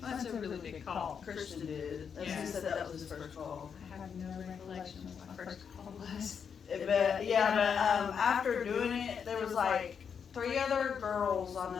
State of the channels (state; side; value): quieter; right; 6.9 dB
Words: That's a really big call. Christian did. As Yeah. he said, that was his first call. I have no recollection of what my first call was. But after doing it, there was like 3 other girls I